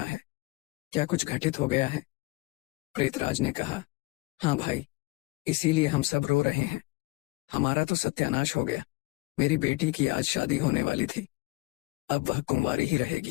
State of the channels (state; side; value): quieter; right; 22.6 dB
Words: है। क्या कुछ घटित हो गया है? प्रेतराज ने कहा, हाँ भाई, इसीलिए हम सब रो रहे हैं। हमारा तो सत्यानाश हो गया। मेरी बेटी की आज शादी होने वाली थी, अब वह कुंवारी ही